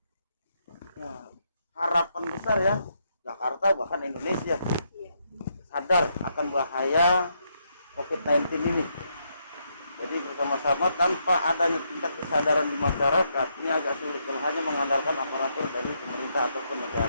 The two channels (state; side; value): inverted; both; correlation -0.78